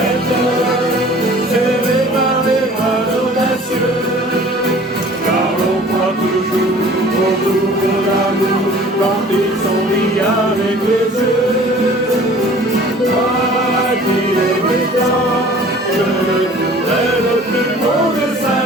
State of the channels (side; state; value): both; normal; correlation 0.48